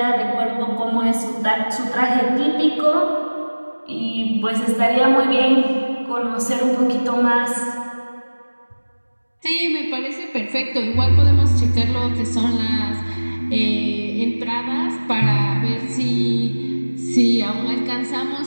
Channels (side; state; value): both; inverted; correlation -1.00